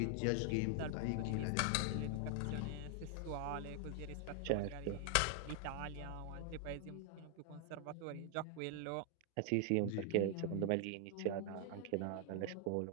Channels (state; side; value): different; both; correlation 0.00